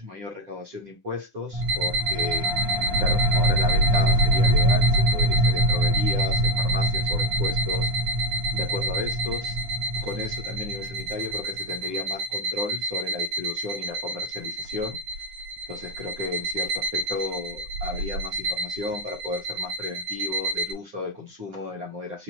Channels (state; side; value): late; left; 9.8 ms